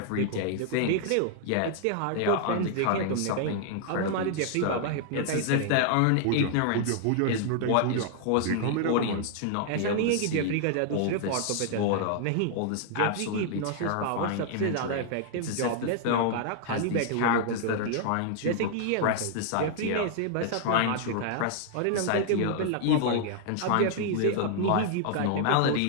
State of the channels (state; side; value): different; both; correlation 0.00